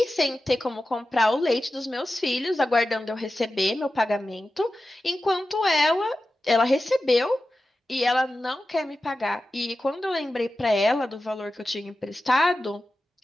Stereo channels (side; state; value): both; normal; correlation 0.93